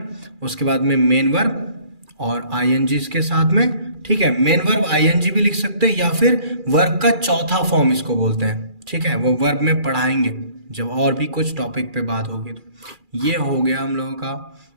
उसके बाद में मेन वर्ब और आई एन जी इसके साथ में, ठीक है। मेन वर्ब आईएनजी भी लिख सकते हैं, या फिर वर्ब का चौथा फॉर्म इसको बोलते हैं, ठीक है। वो वर्ब में पढ़ाएंगे जब और भी कुछ टॉपिक पे बात होगी। तो ये हो गया हम लोगों का,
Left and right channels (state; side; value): late; left; 2.4 ms